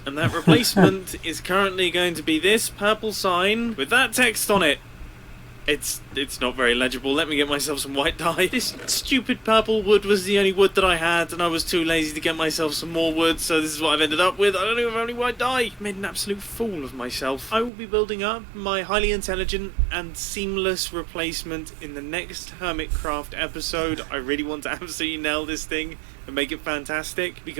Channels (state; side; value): drops out; left; at 17.7 s